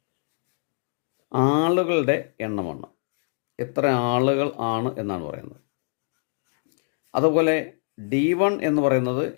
ആളുകളുടെ എണ്ണമാണ്, എത്ര ആളുകൾ ആണ് എന്നാണ് പറയുന്നത്. അതുപോലെ D1 എന്ന് പറയുന്നത്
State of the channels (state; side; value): silent; right; digital silence